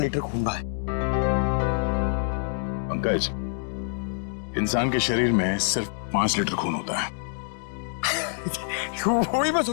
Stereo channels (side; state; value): right; silent; 61 dB below the other